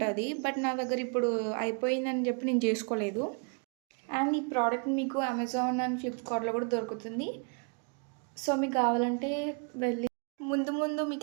బట్ నా దగ్గర ఇప్పుడు అయిపోయిందని చెప్పి నేను చేసుకోలేదు. అండ్ ఈ ప్రోడక్ట్ మీకు అమెజాన్ అండ్ ఫ్లిప్కార్ట్లో కూడా దొరుకుతుంది. సో మీకు కావాలంటే వెళ్ళి ముందు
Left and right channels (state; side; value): quieter; left; 39.2 dB